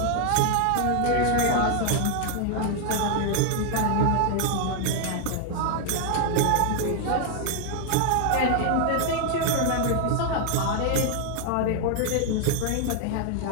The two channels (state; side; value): different; both; correlation 0.00